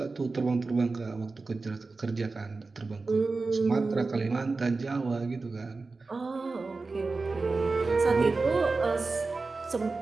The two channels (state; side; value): quieter; left; 3.8 dB